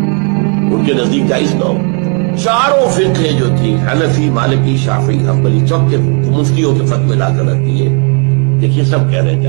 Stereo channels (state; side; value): quieter; left; 38.4 dB